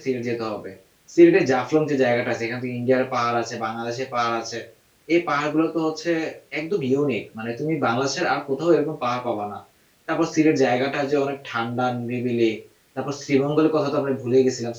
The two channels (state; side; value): identical; both; correlation 1.00